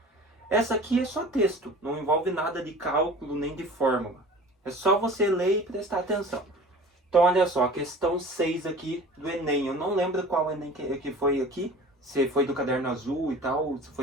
Essa aqui é só texto, não envolve nada de cálculo nem de fórmula. É só você ler e prestar atenção. Então olha só, a questão 6 aqui do Enem. Eu não lembro qual Enem que foi aqui. Se foi do caderno azul e tal, se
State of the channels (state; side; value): normal; both; correlation 0.41